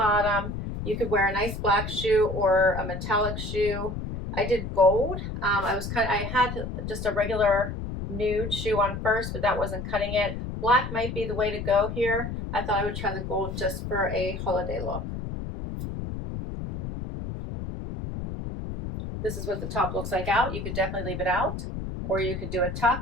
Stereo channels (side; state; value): left; noise; rumble, 6 dB below the sound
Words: You could wear a nice black shoe or a metallic shoe. I did gold. I had just a regular nude shoe on first, but that wasn't cutting it. Black might be the way to go here. I thought I would try the gold just for a holiday look. This is what the top looks like out. You could definitely leave it out, or you could do a